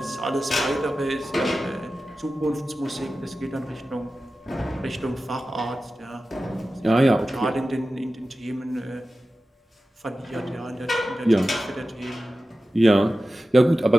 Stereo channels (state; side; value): normal; both; correlation 0.94